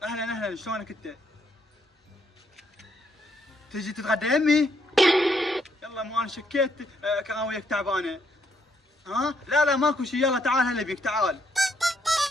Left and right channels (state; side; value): normal; both; correlation 0.73